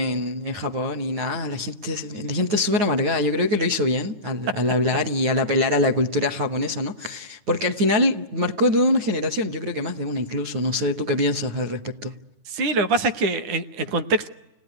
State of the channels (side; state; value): left; late; 9.6 ms